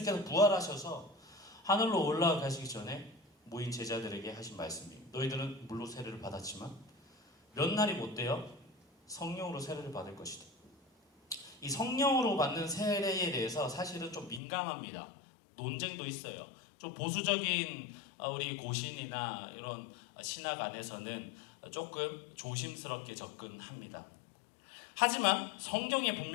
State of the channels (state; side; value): drops out; right; at 14.4 s